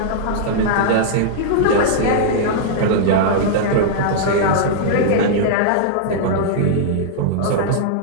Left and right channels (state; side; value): different; both; correlation -0.02